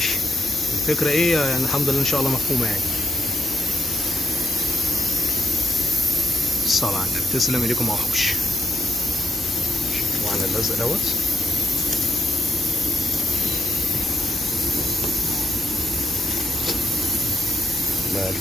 الفكره ايه يعني الحمد لله ان شاء الله مفهومه يعني. الصلاة على النبي. تسلم ايديكم يا وحوش. شوفوا على اللزق دوت.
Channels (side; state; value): both; normal; correlation 0.75